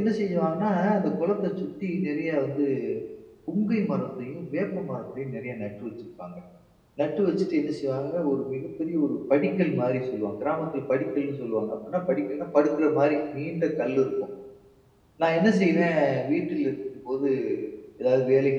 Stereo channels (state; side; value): identical; both; correlation 1.00